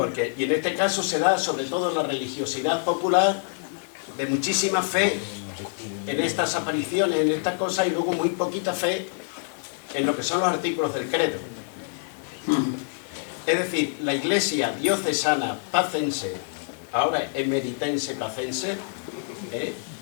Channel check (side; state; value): right; silent; digital silence